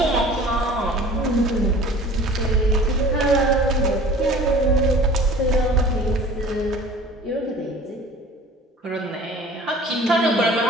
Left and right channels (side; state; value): both; normal; correlation 0.45